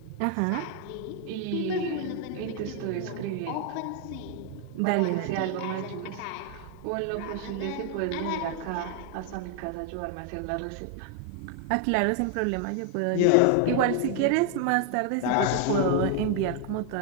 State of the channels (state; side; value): different; both; correlation 0.00